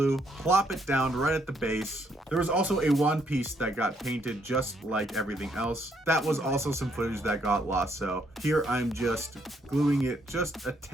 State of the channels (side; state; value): both; normal; correlation 0.72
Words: plop it down right at the base. There was also a wand piece that got painted just like everything else. That was also some footage that got lost, so here I'm just gluing it just a